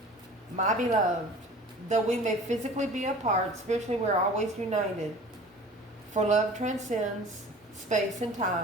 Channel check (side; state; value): both; normal; correlation 0.43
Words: My beloved, though we may physically be apart, spiritually we're always united. For love transcends space and